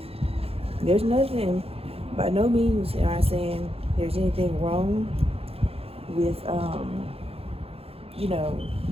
There's nothing, by no means am I saying there's anything wrong with, you know,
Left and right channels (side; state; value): left; late; 0.28 ms